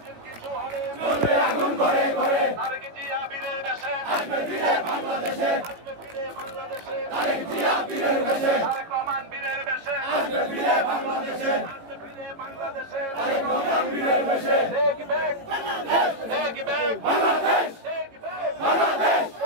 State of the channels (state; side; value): late; left; 18 ms